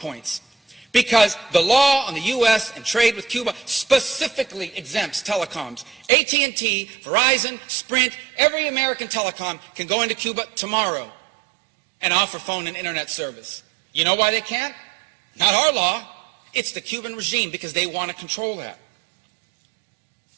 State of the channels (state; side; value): drops out; left; at 6.1 s